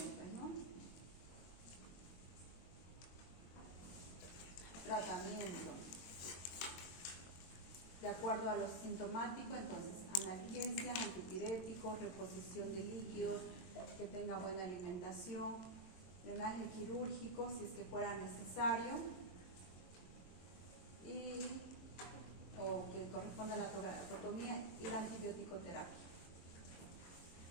pues, ¿no? Tratamiento. De acuerdo a lo sintomático, entonces, analgesia, antipirético, reposición de líquidos, que tenga buena alimentación, drenaje quirúrgico, si es que fuera necesario, o que corresponda a la toracotomía y la antibioticoterapia.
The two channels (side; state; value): right; late; 22 ms